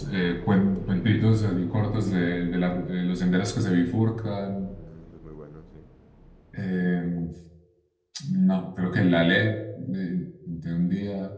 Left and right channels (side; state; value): both; identical; correlation 1.00